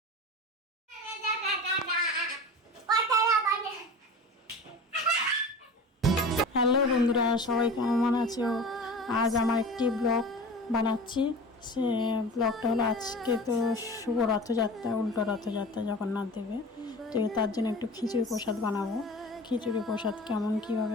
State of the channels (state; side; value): normal; both; correlation 0.35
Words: হ্যালো বন্ধুরা, সবাই কেমন আছো? আজ আমার একটি ব্লগ বানাচ্ছি। সে ব্লগটা হলো আজকে তো শুভ রথযাত্রা, উল্টো রথযাত্রা জগন্নাথ দেবে, তো তার জন্য একটু খিচুড়ি প্রসাদ বানাবো। খিচুড়ি প্রসাদ কেমন